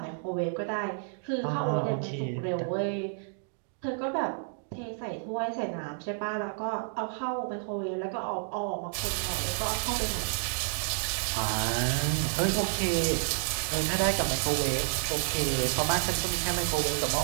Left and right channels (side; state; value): left; silent; digital silence